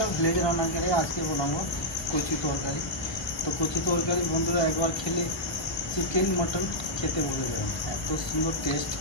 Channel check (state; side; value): late; right; 1.0 ms